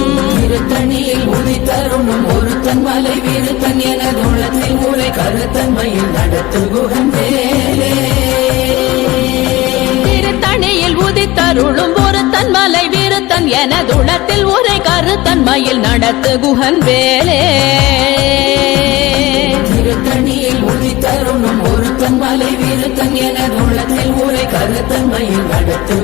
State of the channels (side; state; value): right; quieter; 19.3 dB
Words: திருத்தணியில் உதித்தருணும் ஒருத்தன் மலை வீருத்தன் எனது உள்ளத்தில் ஊரை கருத்தன்மையில் நடத்துகுகன் வேலே. திருத்தணியில் உதித்தருளும் ஒருத்தன் மலை வீருத்தன் எனதுளத்தில் உரை கருத்தன்மையில் நடத்துகுகன் வேலே. திருத்தணியில் உதித்தருணும் ஒருத்தன் மலை வீருத்தன் எனது உள்ளத்தில் ஊரை கருத்தன்மையில்